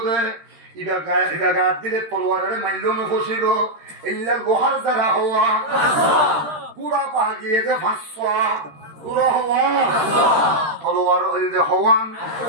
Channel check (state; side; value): late; left; 13 ms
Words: দে ইবা দিলে তলোয়ারের মাইল ফসিব এলে লোহার জেরা হওয়া গুড়া পা গিয়ে যে 500 গুড়ো হওয়া তলোয়ার যে হওয়ান